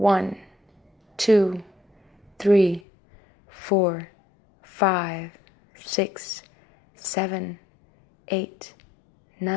2, 3, 4, 5, 6, 7, 8,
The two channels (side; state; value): right; drops out; at 2.8 s